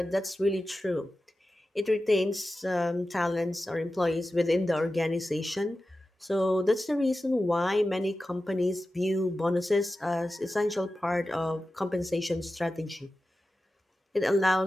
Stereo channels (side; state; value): both; normal; correlation 0.94